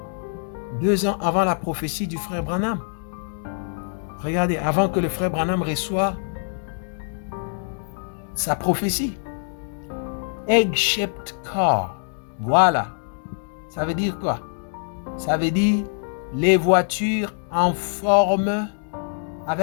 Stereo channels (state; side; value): silent; right; digital silence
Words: 2 ans avant la prophétie du frère Branham. Regardez, avant que le frère Branham reçoive sa prophétie. Egg-shaped car. Voilà. Ça veut dire quoi? Ça veut dire les voitures en forme,